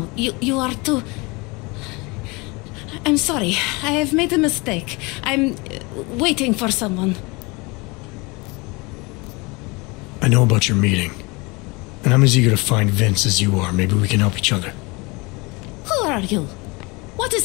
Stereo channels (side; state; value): right; quieter; 26.4 dB